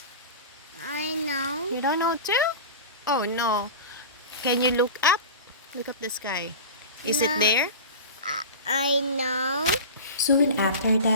I know. You don't know too? Oh no. Can you look up? Look up the sky. Is it No. there? I know. Soon after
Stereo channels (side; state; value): both; inverted; correlation -0.31